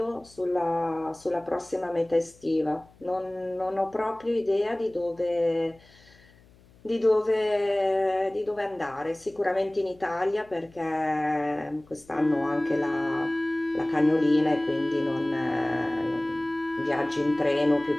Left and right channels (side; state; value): left; noise; hum, 27 dB below the sound